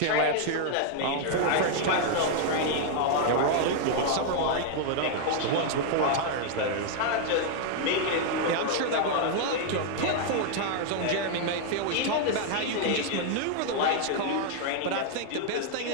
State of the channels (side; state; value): both; different; correlation 0.00